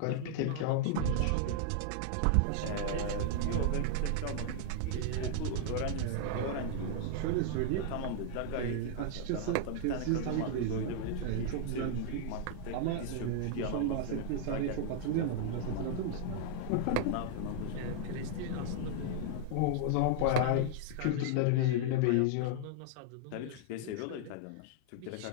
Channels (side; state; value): both; different; correlation -0.01